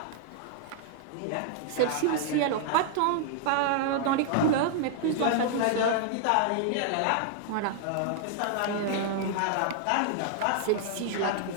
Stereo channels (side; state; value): both; different; correlation -0.01